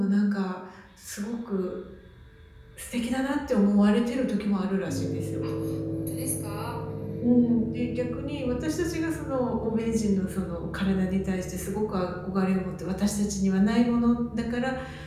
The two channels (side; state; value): both; identical; correlation 1.00